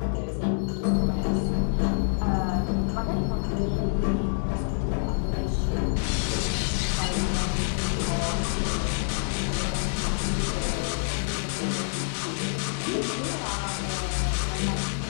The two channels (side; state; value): right; silent; digital silence